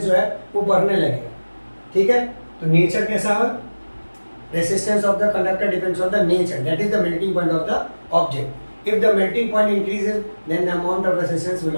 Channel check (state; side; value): inverted; both; correlation -1.00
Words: जो है वो बढ़ने लगेगा। ठीक है, तो नेचर कैसा है, resistance of the conductor depends on the nature, that is the melting point of the object. If the melting point increases, then the amount of resistance will